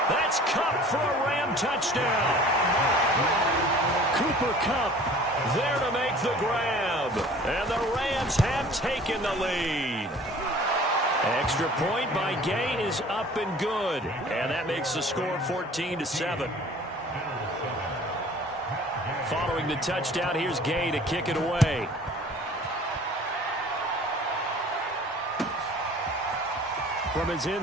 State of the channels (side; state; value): both; normal; correlation 0.48